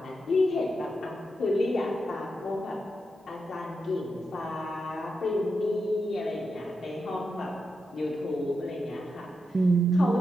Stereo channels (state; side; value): normal; both; correlation 0.86